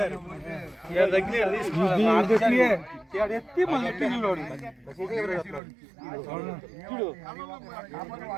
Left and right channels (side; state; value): left; drops out; at 5.6 s